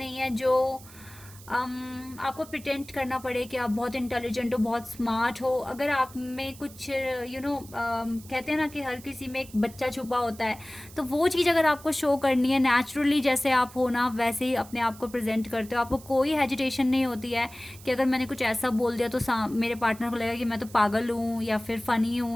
है जो आपको प्रिटेंड करना पड़े कि आप बहुत इंटेलिजेंट हो, बहुत स्मार्ट हो. अगर आप में कुछ कहते हैं ना कि हर किसी में एक बच्चा छुपा होता है, तो वो चीज़ अगर आपको शो करनी है नेचुरली, जैसे आप हो ना वैसे ही अपने आप को प्रेजेंट करते हो. आपको कोई हेजिटेशन नहीं होती है कि अगर मैंने कुछ ऐसा बोल दिया तो मेरे पार्टनर को लगेगा कि मैं तो पागल हूँ या फिर फ़नी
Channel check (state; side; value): noise; right; hiss, 20 dB below the sound